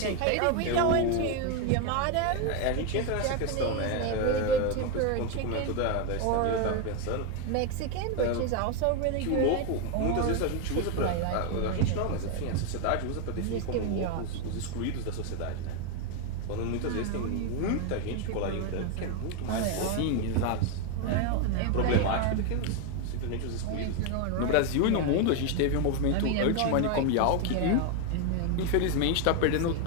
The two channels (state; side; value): different; both; correlation 0.01